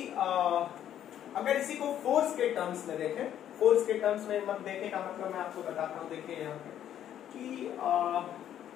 अगर इसी को फोर्स के टर्म्स में देखें, फोर्स के टर्म्स में मत देखें का मतलब मैं आपको बताता हूं। देखिए यहाँ पे कि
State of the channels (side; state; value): right; quieter; 10.7 dB